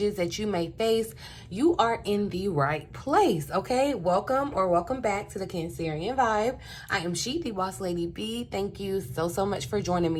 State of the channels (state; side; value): identical; both; correlation 1.00